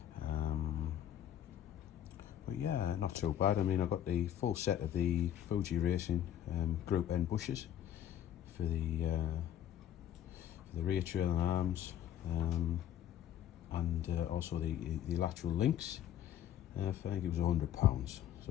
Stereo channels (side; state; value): right; quieter; 11.0 dB